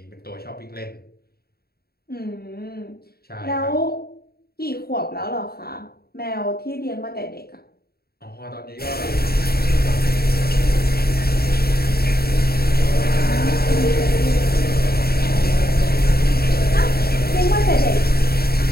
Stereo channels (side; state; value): right; late; 0.45 ms